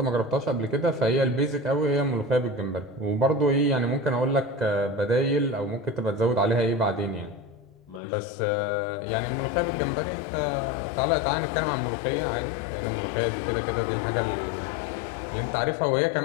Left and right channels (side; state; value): right; drops out; at 8.0 s